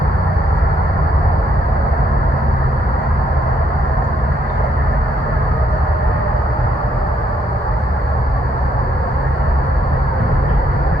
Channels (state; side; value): normal; both; correlation 0.72